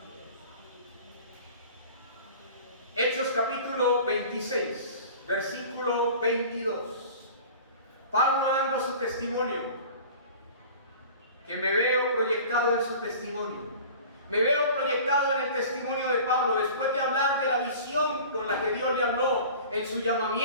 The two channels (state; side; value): inverted; both; correlation -0.41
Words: Hechos capítulo 26, versículo 22. Pablo dando su testimonio, que me veo proyectado en su testimonio. Me veo proyectado en el testimonio de Pablo, después de hablar de la visión con la que Dios le habló en su